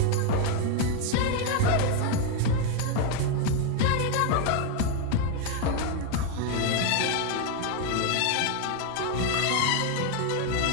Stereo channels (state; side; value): different; both; correlation 0.01